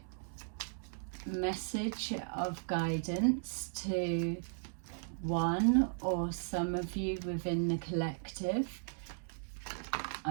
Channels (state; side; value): silent; left; digital silence